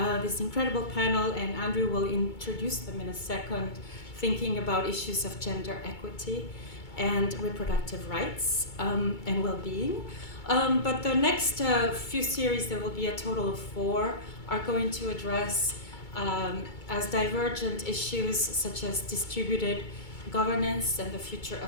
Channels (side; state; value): right; late; 2.2 ms